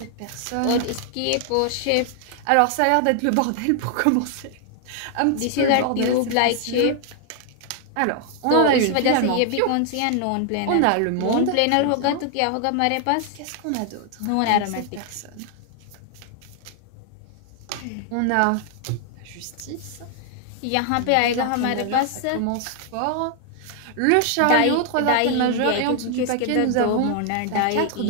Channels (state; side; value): different; both; correlation 0.00